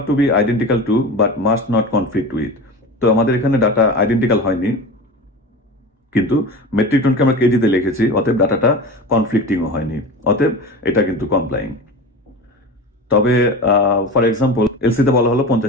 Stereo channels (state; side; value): normal; both; correlation 0.30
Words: to be identical to but must not conflict with. তো আমাদের এখানে ডাটা আইডেন্টিক্যাল হয়নি, কিন্তু মেট্রিক টনকে আমরা কেজিতে লিখেছি, অতএব ডাটাটা কনফ্লিক্টিংও হয়নি, অতএব এটা কিন্তু কমপ্লাইং। তবে ফর এক্সাম্পল এলসিতে বলা হলো